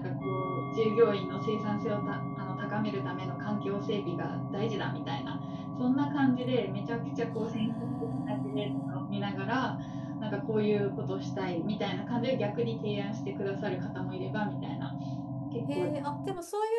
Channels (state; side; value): identical; both; correlation 1.00